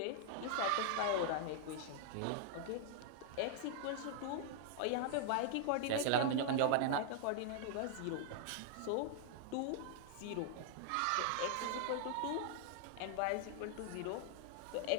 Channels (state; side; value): different; both; correlation -0.01